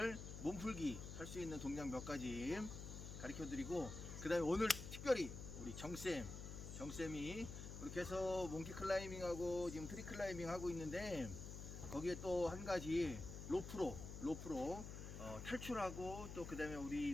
몸풀기 할 수 있는 동작 몇 가지 가르쳐 드리고, 그 다음에 오늘 특별히 우리 정쌤이 그렇게 해서 몽키 클라이밍하고 지금 트리 클라이밍 하고 있는데, 거기에 또 한 가지 로프로 탈출하고, 또 그 다음에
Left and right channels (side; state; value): left; noise; hum, 8 dB below the sound